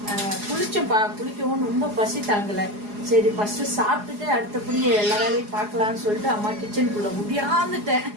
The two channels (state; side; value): late; left; 4.8 ms